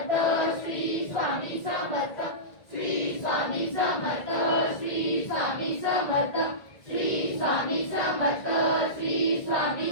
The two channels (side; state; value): right; late; 1.8 ms